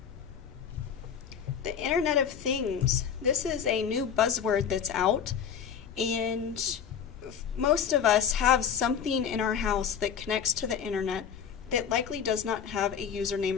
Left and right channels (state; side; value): quieter; right; 7.7 dB